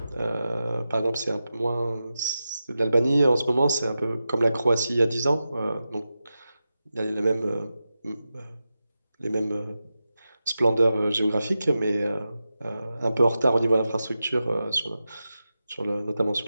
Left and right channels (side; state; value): both; inverted; correlation -0.92